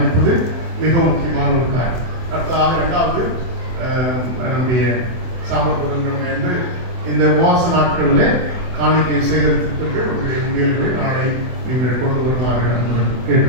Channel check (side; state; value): left; late; 24 ms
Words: மிக முக்கியமான ஒரு காரியம். அடுத்ததாக 2வது நம்முடைய சாமர்த்தியங்கள் வந்து இந்த உபவாச நாட்களில் காணிக்கை சேகரித்திருப்பீர்கள். உங்களுடைய உண்டியல்களை நாளை நீங்கள் கொண்டு வருமாறு